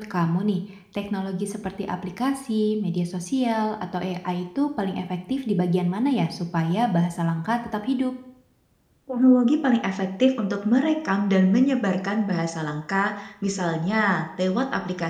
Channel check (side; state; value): both; identical; correlation 1.00